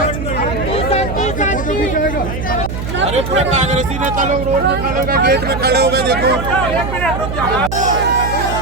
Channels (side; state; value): right; noise; hum, 5 dB below the sound